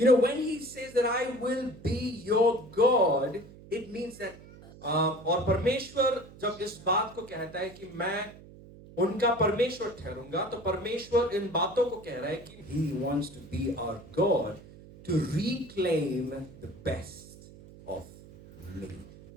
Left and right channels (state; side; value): noise; right; hum, 19 dB below the sound